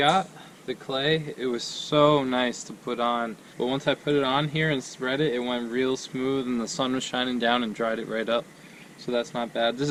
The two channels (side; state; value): both; identical; correlation 1.00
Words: the clay. It was so nice to put on, but once I put it on here and spread it, it went real smooth and the sun was shining down and dried it right up. So that's not bad. This